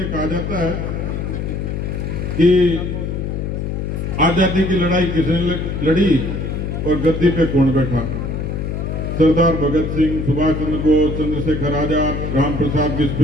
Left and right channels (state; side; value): noise; left; hum, 3 dB below the sound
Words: कहा जाता है कि आजादी की लड़ाई किसने लड़ी और गद्दी पे कौन बैठा? सरदार भगत सिंह, सुभाष चंद्र बोस, चंद्रशेखर आजाद, राम प्रसाद